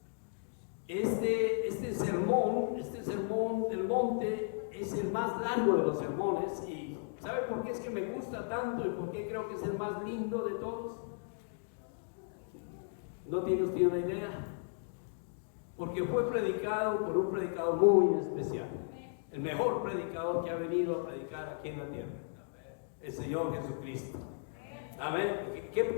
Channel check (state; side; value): silent; right; digital silence